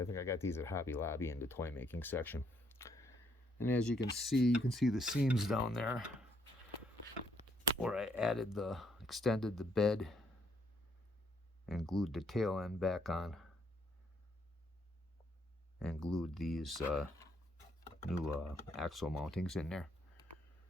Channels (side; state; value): both; normal; correlation 0.71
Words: I got these at Hobby Lobby in the toy making section. And as you can see the seams down there where I extended the bed and glued the tail end back on, and glued these axle mountings in there.